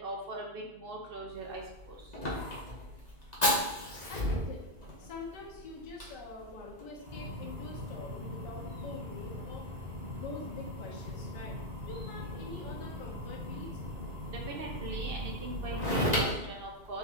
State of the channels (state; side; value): late; left; 1.9 ms